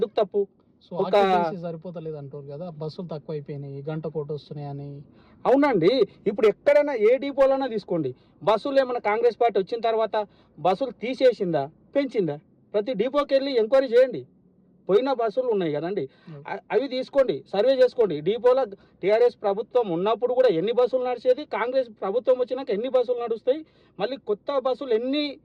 తప్పు? సో సరిపోతలేదు అంటారు కదా, బస్సులు తక్కువ అయిపోయినాయి, గంట కోట వస్తున్నాయి అని. అవునండి, ఇప్పుడు ఎక్కడైనా ఏ డిపోలైనా తీసుకోండి, బస్సులు ఏమైనా కాంగ్రెస్ పార్టీ వచ్చిన తర్వాత బస్సులు తీసేసిందా పెంచిందా? ప్రతి డిపోకి వెళ్ళి ఎంక్వైరీ చేయండి. పోయిన బస్సులు ఉన్నాయి కదండి, అవి తీసుకోండి, సర్వే చేసుకోండి. డిపోలో టీఆర్ఎస్ ప్రభుత్వం ఉన్నప్పుడు కూడా ఎన్ని బస్సులు నడిచేది, కాంగ్రెస్ ప్రభుత్వం వచ్చినాక ఎన్ని బస్సులు నడుస్తాయి, మళ్ళీ కొత్త బస్సులు ఎన్ని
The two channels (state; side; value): identical; both; correlation 1.00